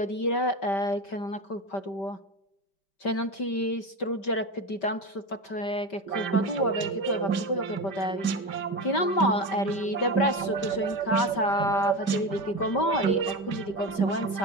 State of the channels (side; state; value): right; late; 5.1 ms